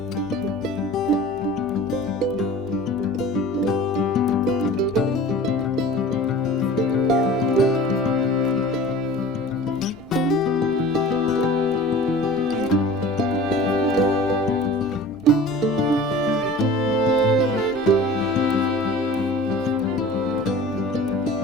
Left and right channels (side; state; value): both; normal; correlation 0.41